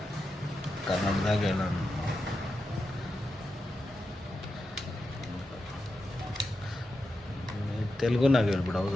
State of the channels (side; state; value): both; normal; correlation 0.89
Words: ಕನ್ನಡದಾಗ ತೆಲುಗುನಾಗ ಹೇಳ್ಬಿಡು.